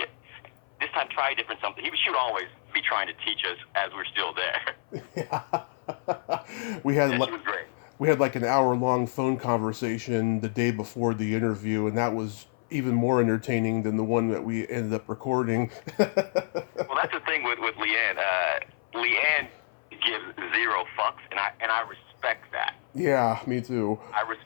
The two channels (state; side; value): silent; right; 56 dB below the other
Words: this time try a different something. She would always be trying to teach us as we're still there. Yeah. She was great. We had like an hour-long phone conversation the day before the interview, and that was even more entertaining than the one that we ended up recording. Well, that's the thing with Leanne. Leanne gives zero fucks, and I respect that. Yeah, me too. I